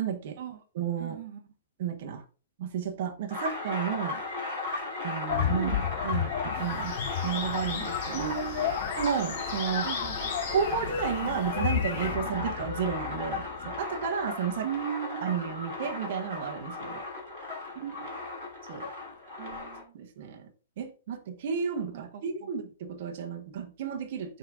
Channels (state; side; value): inverted; both; correlation -0.36